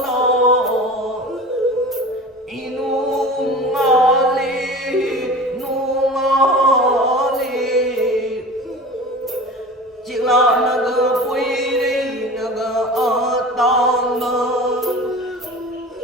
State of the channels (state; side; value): normal; both; correlation 0.36